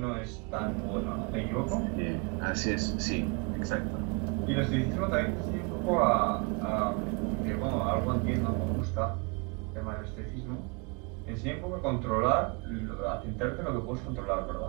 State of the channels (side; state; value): left; quieter; 31.6 dB